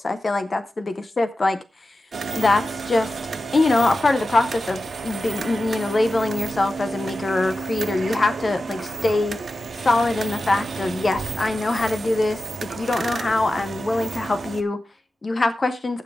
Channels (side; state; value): both; normal; correlation 0.93